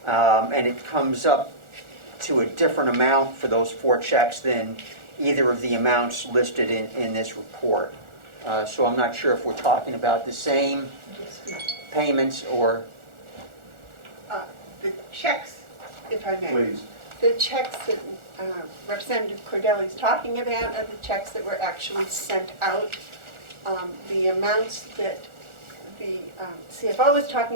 And it comes up to a different amount for those 4 checks than either of the amounts listed in this report. So I'm not sure if we're talking about the same payments or... The checks, if I may. Please. The checks that Representative Cordelli's talking about are the checks that were actually sent out. The amounts that the CFO was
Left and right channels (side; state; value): left; late; 1.4 ms